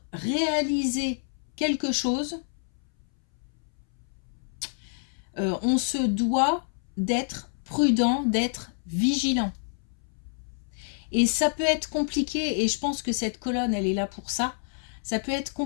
réaliser quelque chose, on se doit d'être prudent, d'être vigilant. Et ça peut être compliqué, et je pense que cette colonne, elle est là pour ça. Ça peut être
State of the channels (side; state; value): right; silent; 59 dB below the other